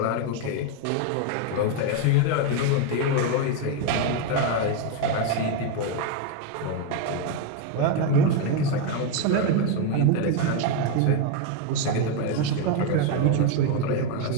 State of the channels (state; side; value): different; both; correlation 0.02